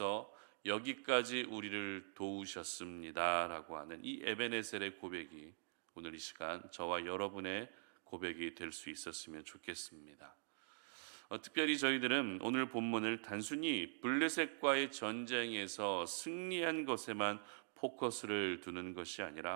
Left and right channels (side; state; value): left; silent; digital silence